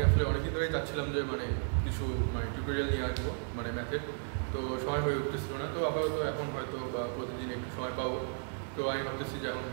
আসলে অনেকদিন ধরেই চাচ্ছিলাম যে কিছু টিউটোরিয়াল নিয়ে আসবো ম্যাথের। তো সময় হয়ে উঠতেছিল না, তো আপাতত এখন হয়তো বা প্রতিদিন একটু সময় পাবো। তো আমি ভাবতেছি যে এখন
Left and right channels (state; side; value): silent; left; 55 dB below the other